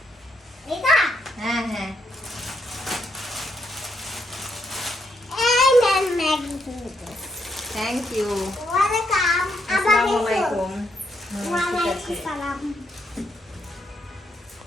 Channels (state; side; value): normal; both; correlation 0.77